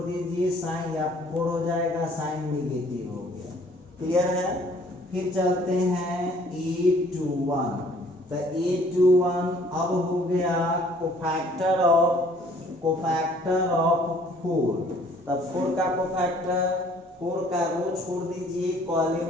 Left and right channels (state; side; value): normal; both; correlation 0.57